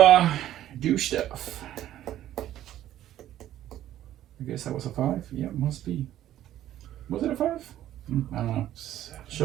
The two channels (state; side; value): quieter; left; 12.6 dB